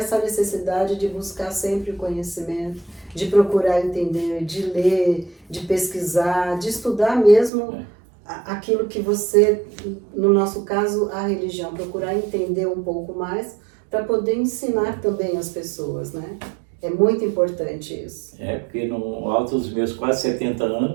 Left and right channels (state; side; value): drops out; left; at 7.5 s